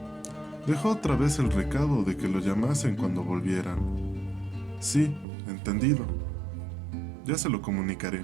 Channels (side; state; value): left; drops out; at 5.2 s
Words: Dejó otra vez el recado de que lo llamasen cuando volvieran. Sí, entendido. Ya se lo comunicaré,